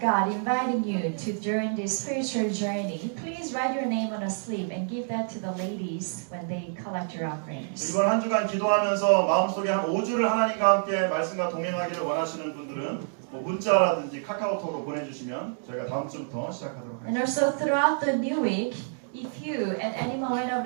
inviting you to join this spiritual journey, please write your name on a slip and give that to the ladies when they collect your offerings. 이번 한 주간 기도하면서 마음속에 한 5주를 하나님과 함께 말씀과 동행하기를 원하시는 분들은 문자라든지 카카오톡으로 보내주시면 저희가 다음 주부터 시작하도록 And 하겠습니다. also throughout the new week, if you at any moment of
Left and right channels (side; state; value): left; silent; digital silence